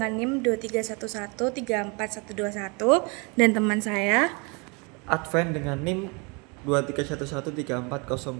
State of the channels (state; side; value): quieter; left; 30.7 dB